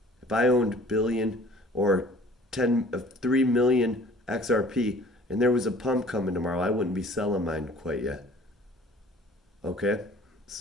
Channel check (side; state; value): both; normal; correlation 0.51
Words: if I owned billion or 3 million XRP and there was a pump coming tomorrow, I wouldn't be selling mine quite yet. Okay?